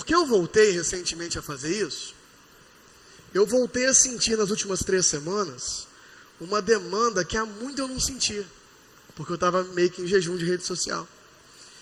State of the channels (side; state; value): both; identical; correlation 1.00